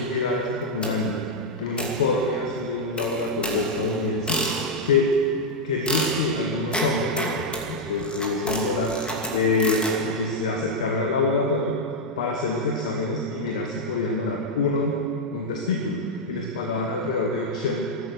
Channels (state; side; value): normal; both; correlation -0.02